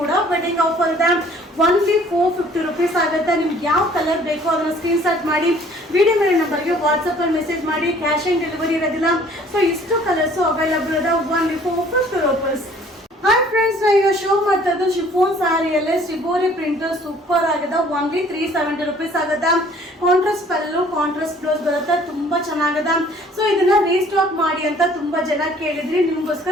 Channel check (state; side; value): normal; both; correlation 0.55